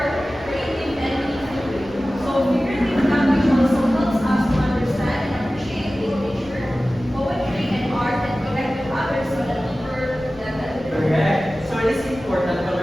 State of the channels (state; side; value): noise; left; rumble, 22 dB below the sound